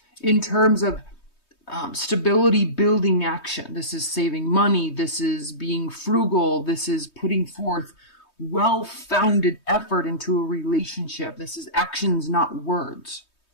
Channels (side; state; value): right; late; 3.2 ms